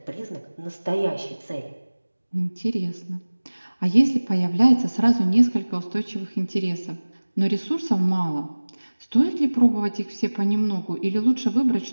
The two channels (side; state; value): both; inverted; correlation -1.00